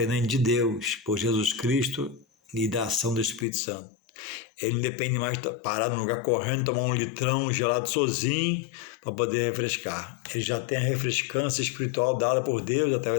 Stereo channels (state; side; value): drops out; right; at 3.5 s